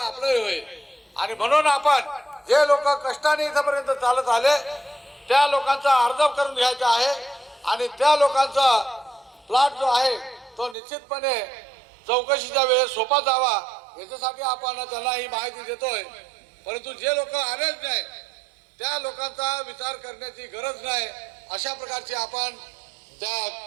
आपलंही होईल। आणि म्हणून आपण जे लोक कष्टाने इथपर्यंत चालत आले त्या लोकांचा अर्ज करून घ्यायचा आहे आणि त्या लोकांचा प्लॉट जो आहे तो निश्चितपणे चौकशीच्या वेळेस सोपा जावा याच्यासाठी आपण त्यांना ही माहिती देतोय। परंतु जे लोक आलेच नाही त्या लोकांचा विचार करण्याची गरज नाही, अशा प्रकारची आपण त्या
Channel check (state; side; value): drops out; left; at 10.8 s